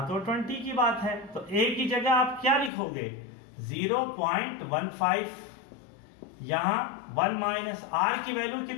तो 20 की बात है तो a की जगह आप क्या लिखोगे 0.15। यहां 1 - r की वैल्यू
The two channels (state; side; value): drops out; right; at 2.7 s